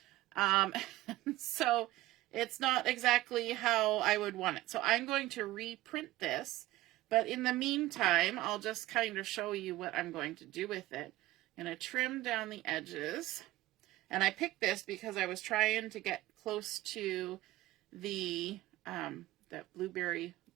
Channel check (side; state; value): left; quieter; 17.0 dB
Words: So it's not exactly how I would want it. So I'm going to reprint this. But in the meantime, I'll just kind of show you what I'm going to do with it. I'm going to trim down the edges. And I picked this because I was trying to get close to the that blueberry